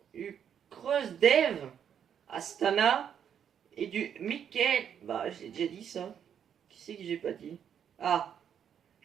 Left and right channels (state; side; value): quieter; left; 8.5 dB